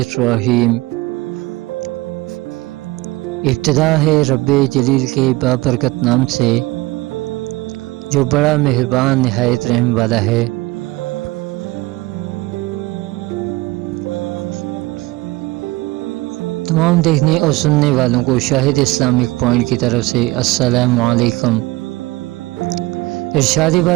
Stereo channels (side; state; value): left; quieter; 20.9 dB